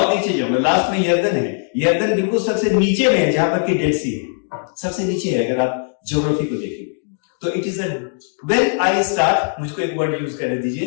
नीचे जाऊंगा। लास्ट में यर्दन है, यर्दन बिल्कुल सबसे नीचे में है, जहां पर कि डेड सी है, सबसे नीचे है अगर आप ज्योग्राफी को देखेंगे तो। It is when I start, मुझको एक वर्ड यूज करने दीजिए,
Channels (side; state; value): right; silent; digital silence